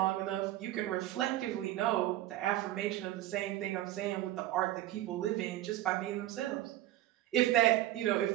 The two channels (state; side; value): quieter; left; 14.5 dB